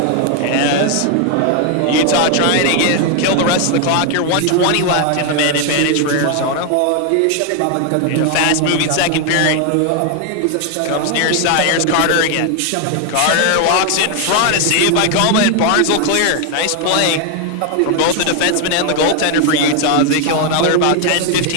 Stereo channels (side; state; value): both; different; correlation 0.01